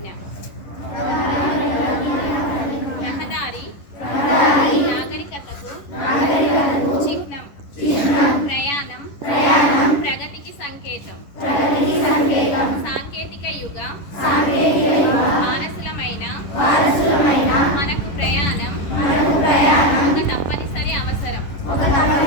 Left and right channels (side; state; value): right; late; 10 ms